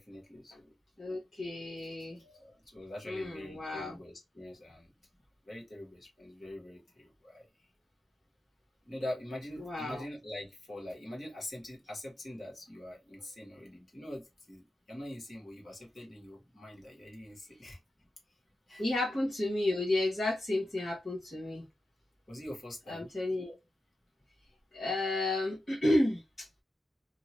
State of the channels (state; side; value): normal; both; correlation 0.90